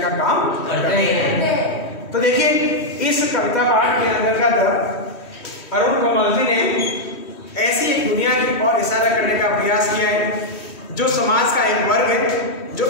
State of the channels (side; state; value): right; late; 3.1 ms